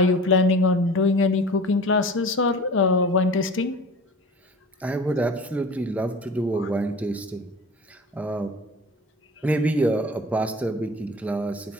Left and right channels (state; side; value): normal; both; correlation 0.39